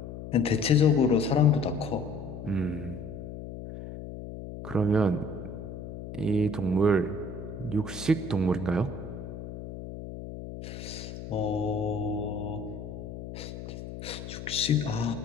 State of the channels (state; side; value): noise; left; hum, 10 dB below the sound